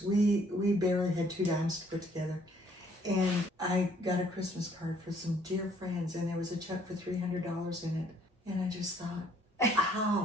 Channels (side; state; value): both; normal; correlation 0.63